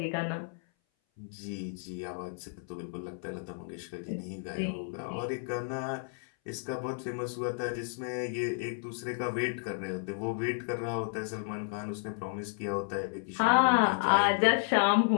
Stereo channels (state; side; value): silent; right; 56 dB below the other